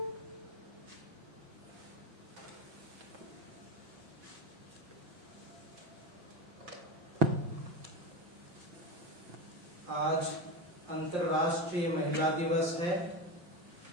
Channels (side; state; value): left; late; 5.7 ms